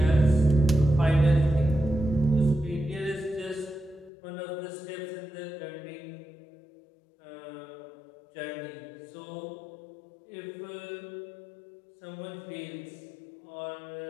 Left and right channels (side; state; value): right; drops out; at 4.1 s